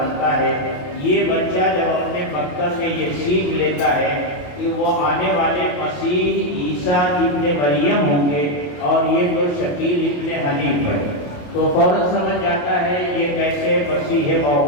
ہے، یہ بچہ جب اپنے مکتب میں یہ سیکھ لیتا ہے کہ وہ آنے والے مسیح عیسیٰ ابن مریم ہوں گے، اور یہ تو شکیل ابن حنیف ہے، تو فوراً سمجھ جاتا ہے یہ کیسے مسیح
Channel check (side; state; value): right; late; 28 ms